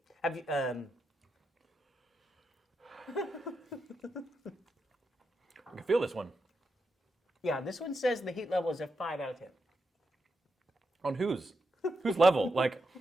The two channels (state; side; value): normal; both; correlation 0.85